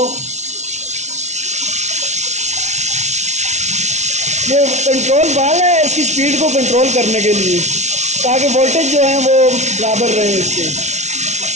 ये control valve है इसकी स्पीड को कंट्रोल करने के लिए, ताकि वोल्टेज जो है वो बराबर रहे इसके।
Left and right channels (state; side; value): late; left; 0.33 ms